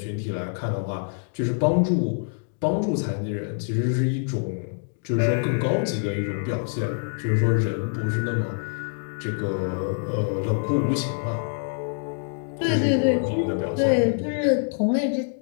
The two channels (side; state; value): right; silent; digital silence